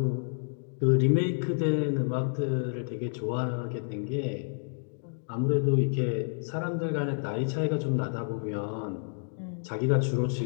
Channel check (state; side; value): silent; right; digital silence